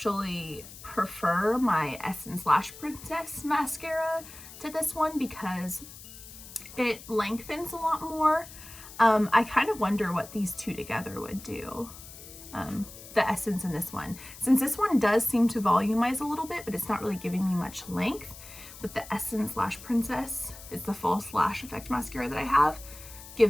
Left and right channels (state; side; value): noise; left; hiss, 16 dB below the sound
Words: prefer my Essence Lash Princess mascara to this one because it lengthens a lot more. I kind of wonder what these two together would do. The Essence and this one. Since this one does seem to volumize a little bit, but it's not really giving me much length. With the Essence Lash Princess, it's the false lash effect mascara that I have,